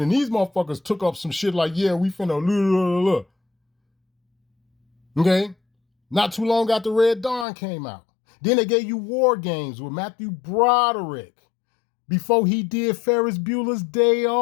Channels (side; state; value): right; drops out; at 7.5 s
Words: and these motherfuckers took up some shit like, yeah, we finna Okay? Not too long after Red Dawn came out. Then they gave you War Games with Matthew Broderick before he did Ferris Bueller's Day